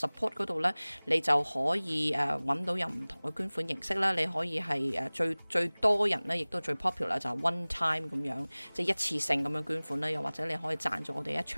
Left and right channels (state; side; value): inverted; both; correlation -1.00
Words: 嗰度咧，你就可以揾到有唔同嘅捐款形式啦。你可以係最多人咧，亦都最 popular 就係 one time 咁樣，即係一次性咁樣捐款啦。又或者你可以贊助我哋一